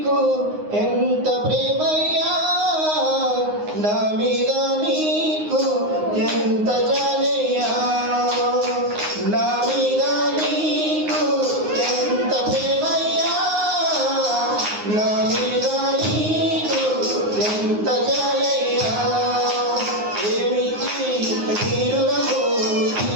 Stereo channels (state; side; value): late; left; 9.6 ms